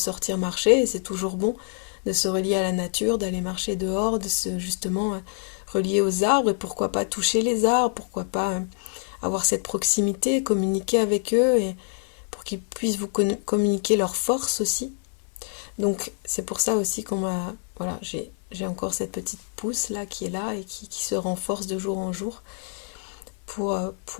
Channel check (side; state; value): right; silent; 61 dB below the other